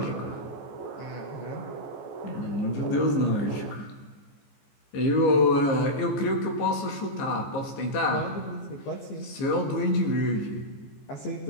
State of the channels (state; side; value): late; right; 15 ms